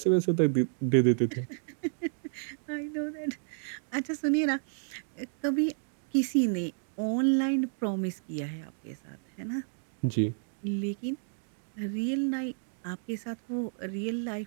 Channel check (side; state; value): left; silent; digital silence